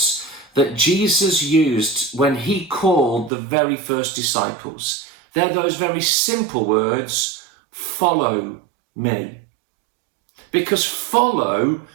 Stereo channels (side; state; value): left; drops out; at 3.3 s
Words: that Jesus used when he called the very first disciples. They're those very simple words, follow me. Because following